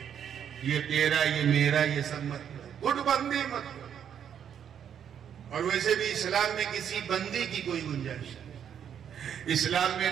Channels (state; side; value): quieter; left; 8.7 dB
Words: یہ تیرا یہ میرا یہ سب مت کرو، گٹ بندی مت کرو۔ اور ویسے بھی اسلام میں کسی بندی کی کوئی گنجائش نہیں، اسلام میں